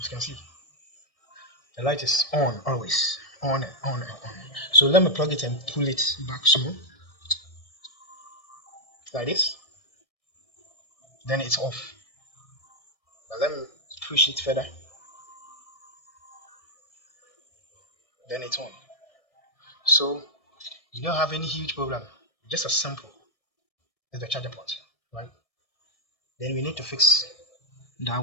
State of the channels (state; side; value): late; right; 1.6 ms